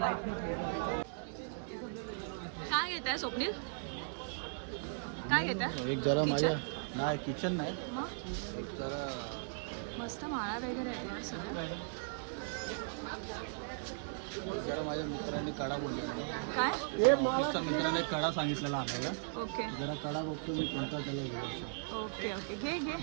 काय घेत आहे स्वप्नील? काय घेता एक जरा किचन माझ्या नाही किचन नाही मग एक जरा मस्त माळा वगैरे आहेत यार सगळं. जरा माझ्या मित्राने कडा बोललेला काय ऑफिसच्या मित्राने कडा सांगितलेला आपल्याला ओके जरा कडा बघतो मी कोणता त्याला घेऊ असं ओके ओके घे घे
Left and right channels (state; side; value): silent; left; digital silence